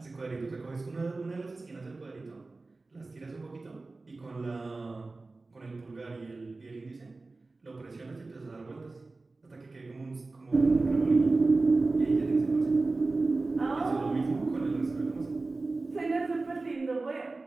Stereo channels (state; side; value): quieter; left; 3.5 dB